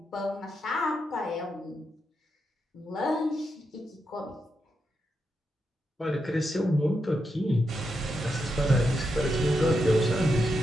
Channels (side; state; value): both; normal; correlation 0.84